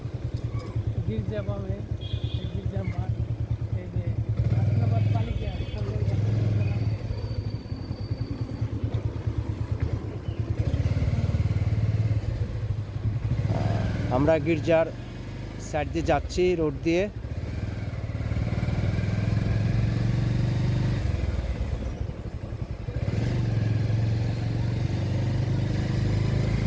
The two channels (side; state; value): both; identical; correlation 1.00